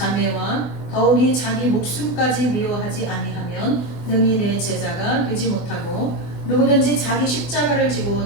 더욱이 자기 목숨까지 미워하지 아니하면 능히 내 제자가 되지 못하고 누구든지 자기 십자가를 지고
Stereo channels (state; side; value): late; right; 24 ms